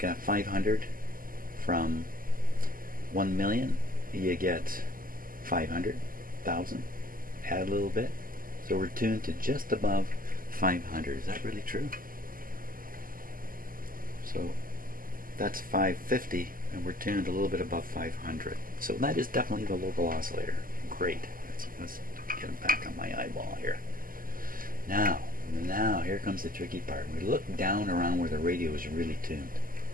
500 from 1 million, you get 500,000. Add a little bit. So we're tuned to just above 500. Is that really true? So that's 550, and we're tuned a little bit above 500. So that is definitely the local oscillator. Great. Let's get it back on my eyeball here. Now here comes the tricky part. We look down around where the radio is really tuned.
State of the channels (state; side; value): late; left; 0.41 ms